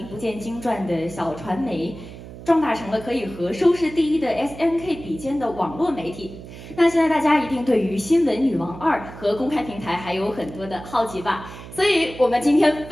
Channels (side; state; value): right; noise; hum, 14 dB below the sound